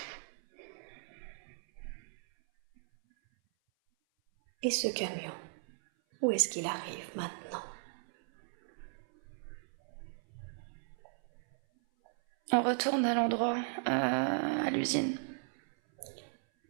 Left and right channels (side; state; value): left; silent; 54 dB below the other